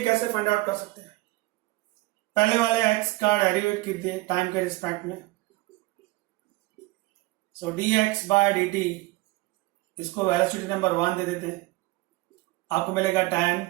कैसे फाइंड आउट कर सकते हैं? पहले वाले एक्स का डेरिवेट कीजिए टाइम के रिस्पेक्ट में। सो dx बाय dt, इसको वेलोसिटी नंबर 1 दे देते हैं, आपको मिलेगा 10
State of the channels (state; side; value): quieter; left; 20.9 dB